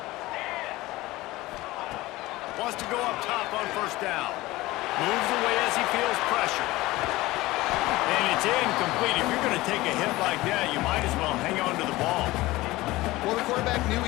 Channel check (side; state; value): right; quieter; 19.0 dB